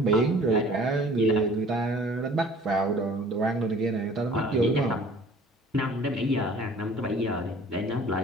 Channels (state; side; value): normal; both; correlation 0.50